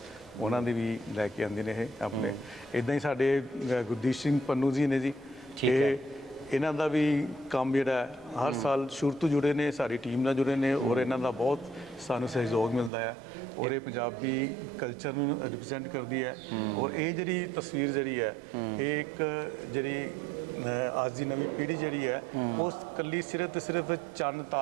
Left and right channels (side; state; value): left; drops out; at 12.9 s